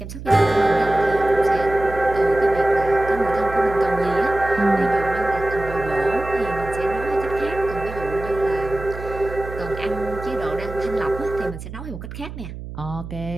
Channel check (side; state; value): right; noise; hum, 11 dB below the sound